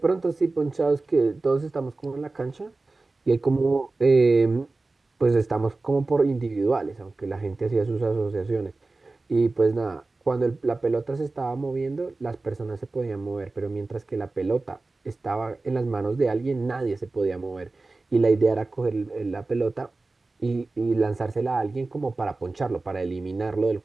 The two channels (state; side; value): quieter; left; 3.4 dB